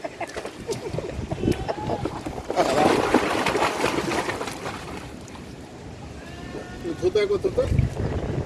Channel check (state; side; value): identical; both; correlation 1.00